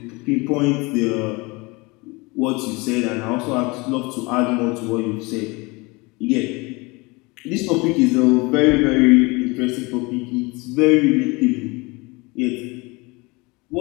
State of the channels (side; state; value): right; quieter; 25.5 dB